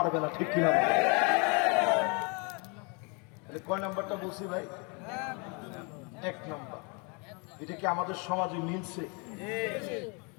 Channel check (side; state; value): right; quieter; 32.8 dB